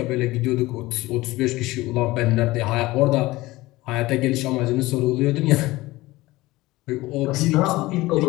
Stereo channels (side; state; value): right; quieter; 19.3 dB